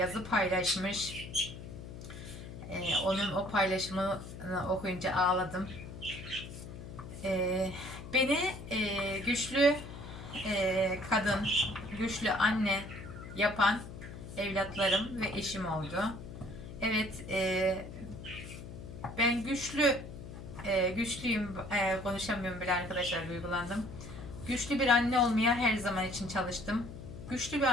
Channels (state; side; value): noise; left; hum, 12 dB below the sound